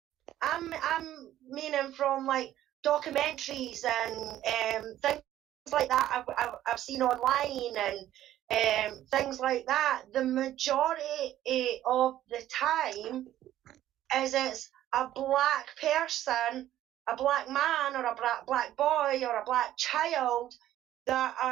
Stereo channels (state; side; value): quieter; left; 12.9 dB